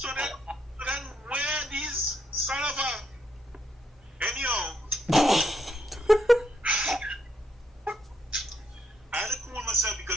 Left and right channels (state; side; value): normal; both; correlation 0.75